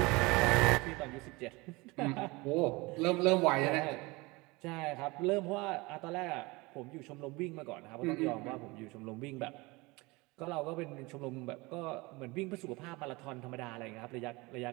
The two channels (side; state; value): left; quieter; 23.9 dB